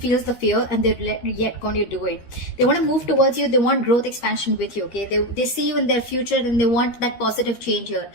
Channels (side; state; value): right; late; 13 ms